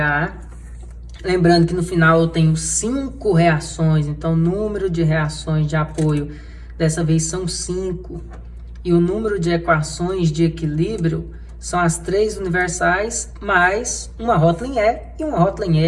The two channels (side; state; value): both; identical; correlation 1.00